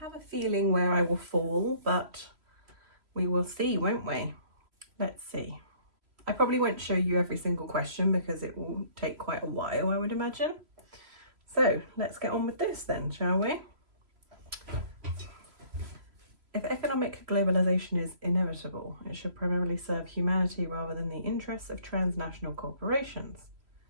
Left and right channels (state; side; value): late; left; 3.0 ms